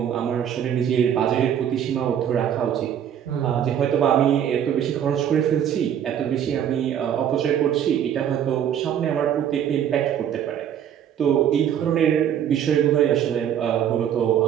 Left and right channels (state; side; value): quieter; left; 9.5 dB